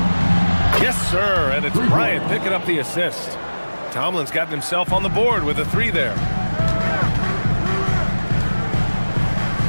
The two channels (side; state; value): both; inverted; correlation -1.00